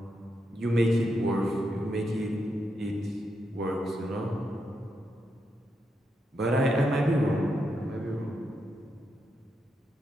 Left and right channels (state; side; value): normal; both; correlation 0.83